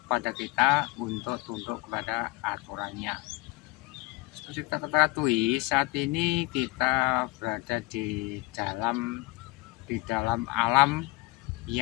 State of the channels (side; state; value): right; quieter; 22.1 dB